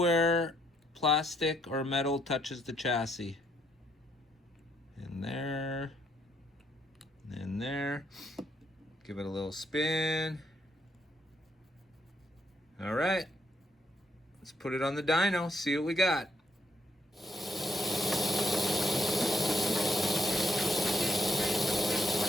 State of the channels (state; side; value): normal; both; correlation 0.73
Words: plastic or metal touches the chassis. In there, and there. Give it a little spin. All right. Let's put it on the dyno, see what we got.